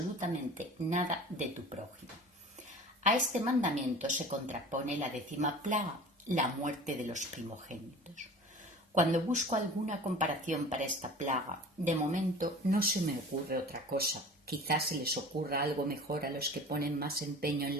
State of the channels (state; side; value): normal; both; correlation 0.40